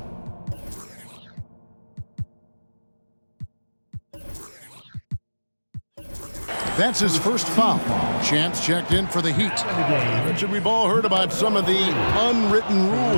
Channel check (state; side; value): inverted; both; correlation -1.00